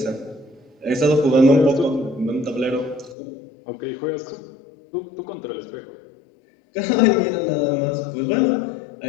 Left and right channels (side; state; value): right; drops out; at 3.2 s